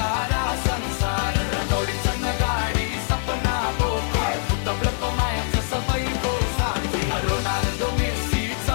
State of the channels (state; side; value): silent; right; digital silence